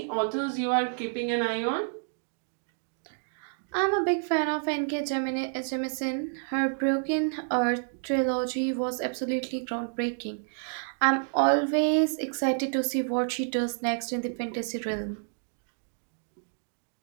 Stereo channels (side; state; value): left; silent; digital silence